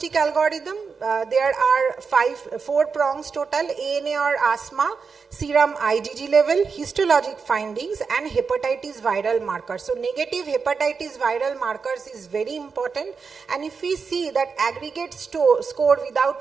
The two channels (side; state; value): left; quieter; 5.3 dB